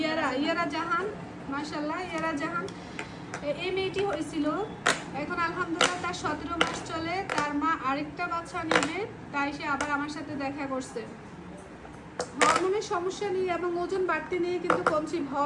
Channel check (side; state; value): both; identical; correlation 1.00